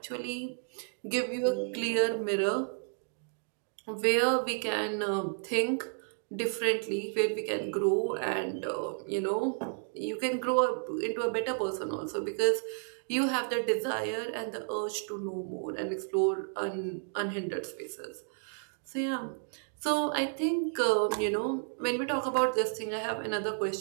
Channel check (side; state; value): left; silent; digital silence